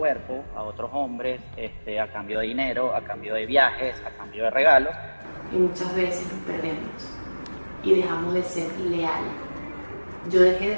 a otros hombres a cambio de dinero, a cambio de viajes, a cambio de regalos. Y muchas veces nos perdemos y dejamos de ser leales. Yo dejé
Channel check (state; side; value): inverted; both; correlation -1.00